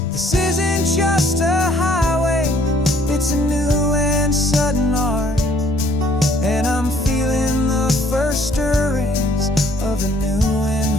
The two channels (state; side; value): normal; both; correlation 0.61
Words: This isn't just a highway, it's a new and sudden art, and I'm feeling the first stirrings of a new